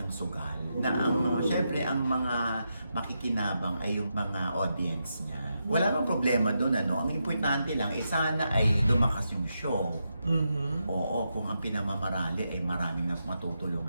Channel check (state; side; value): inverted; both; correlation -0.85